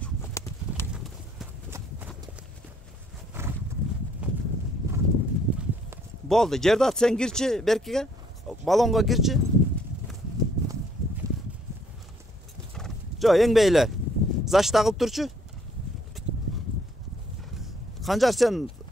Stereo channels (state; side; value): normal; both; correlation 0.65